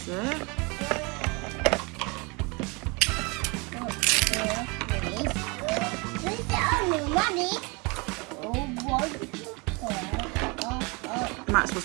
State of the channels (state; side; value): quieter; left; 28.9 dB